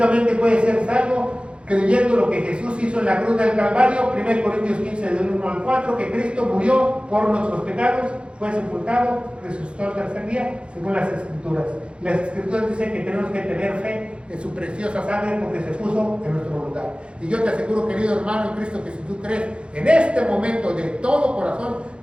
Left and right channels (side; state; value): left; late; 0.057 ms